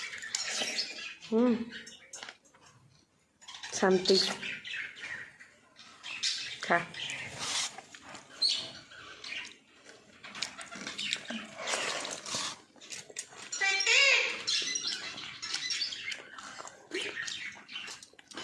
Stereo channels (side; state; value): both; identical; correlation 1.00